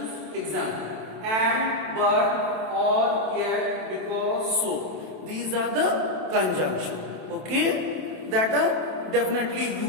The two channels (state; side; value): late; left; 27 ms